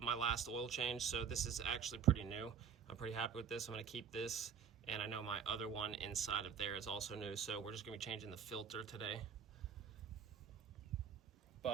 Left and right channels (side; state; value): left; quieter; 7.3 dB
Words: last oil change. So this is actually pretty new. I'm pretty happy with this. I'm gonna keep this. And I know my other one inside of there is also new. So we're just gonna be changing the filter today.